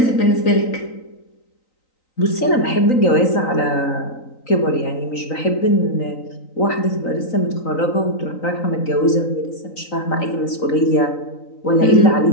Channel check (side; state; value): right; late; 3.9 ms